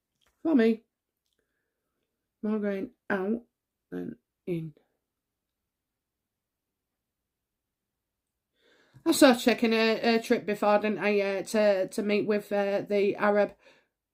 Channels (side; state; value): both; identical; correlation 1.00